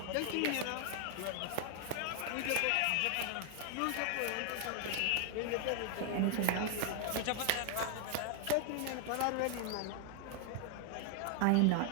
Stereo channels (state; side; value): different; both; correlation 0.00